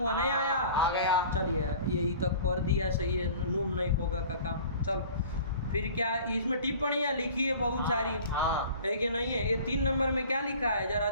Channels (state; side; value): inverted; both; correlation -0.44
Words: नहीं आया? आ गया। चलिए, यही तक कर दिया, सही है, नूम नहीं होगा का काम। चलो, फिर क्या इसमें टिप्पणियाँ लिखी है बहुत सारी, हाँ। है कि नहीं है? ये 3 नंबर में क्या लिखा है जरा